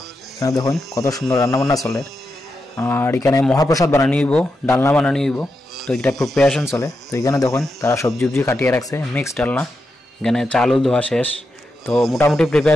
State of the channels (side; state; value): both; normal; correlation 0.87